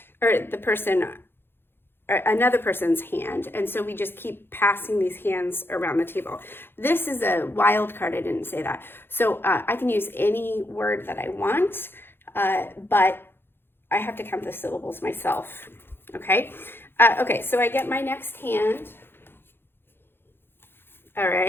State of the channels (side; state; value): right; late; 0.10 ms